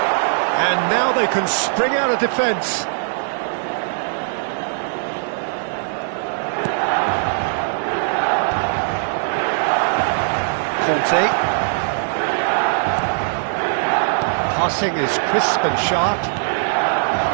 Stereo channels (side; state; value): left; silent; digital silence